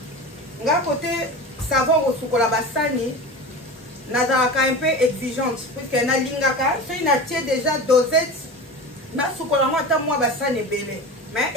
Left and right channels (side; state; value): both; normal; correlation 0.30